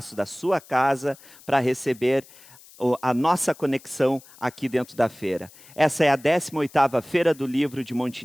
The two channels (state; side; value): noise; left; hiss, 23 dB below the sound